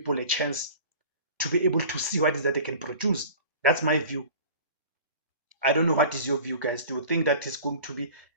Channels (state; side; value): inverted; both; correlation -0.41